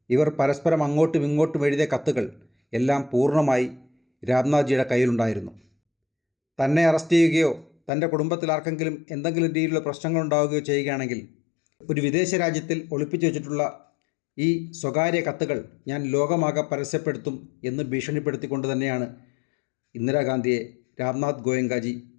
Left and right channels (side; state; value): right; drops out; at 7.9 s